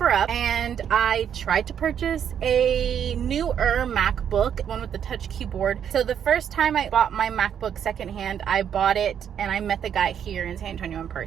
and I tried to purchase a newer MacBook, one with the touch keyboard. So the first time I bought my MacBook secondhand, I bought it and I met the guy here in San Antonio in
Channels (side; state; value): left; quieter; 8.7 dB